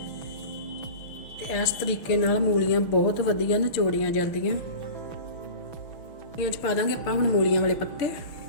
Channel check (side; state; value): right; late; 6.7 ms